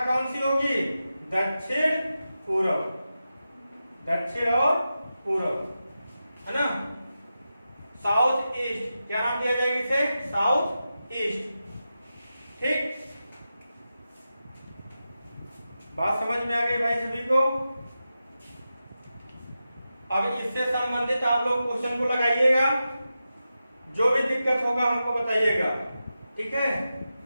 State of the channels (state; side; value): inverted; both; correlation -0.91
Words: कौन सी होगी, दक्षिण पूरब। दक्षिण और पूरब, है ना। साउथ ईस्ट, क्या नाम दिया जाएगा इसे, साउथ ईस्ट। ठीक, बात समझ में आ गई भाई सभी को। अब इससे संबंधित आप लोग क्वेश्चन को लगाइएगा, जो भी दिक्कत होगा हमको बताइएगा। ठीक है,